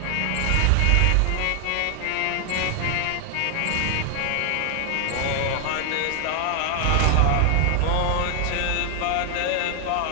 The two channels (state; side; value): different; both; correlation 0.00